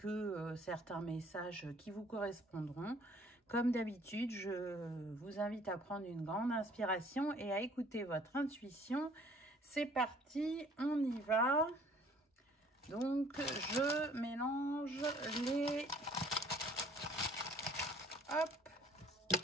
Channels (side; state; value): both; normal; correlation 0.56